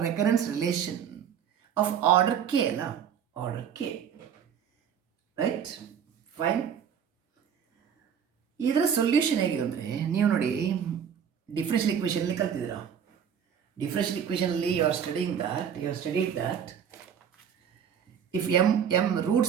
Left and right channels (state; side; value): quieter; left; 8.2 dB